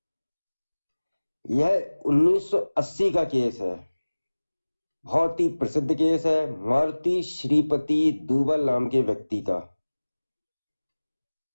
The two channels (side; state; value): both; inverted; correlation -1.00